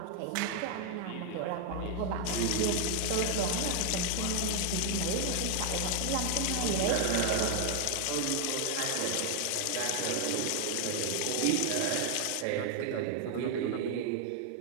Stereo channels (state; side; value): different; both; correlation 0.00